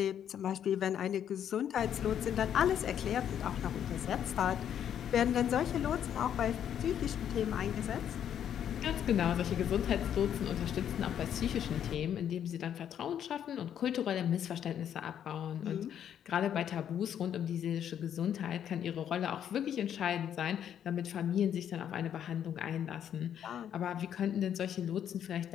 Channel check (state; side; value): quieter; right; 9.5 dB